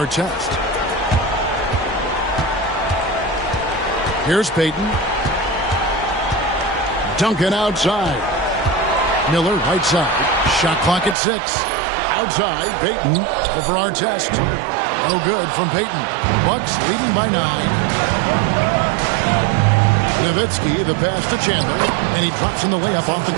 Here's Payton. Duncan outside. Miller right side. Shot clock at 6. Outside, Payton over Artest. No good from Payton. Bucks leading by 9. Nowitzki, the pass to Chandler, and he drops in the layup off the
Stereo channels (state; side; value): drops out; left; at 11.2 s